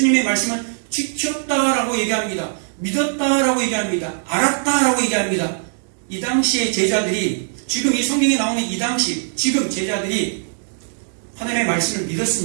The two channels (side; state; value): left; silent; digital silence